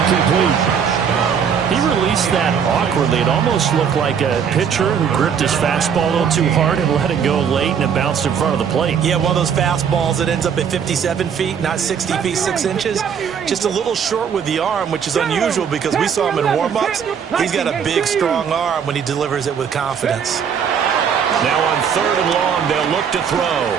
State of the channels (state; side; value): quieter; left; 7.4 dB